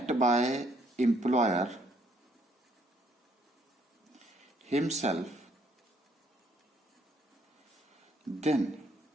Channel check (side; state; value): both; normal; correlation 0.67